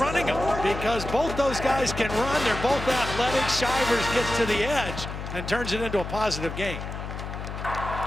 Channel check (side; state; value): left; noise; hum, 7 dB below the sound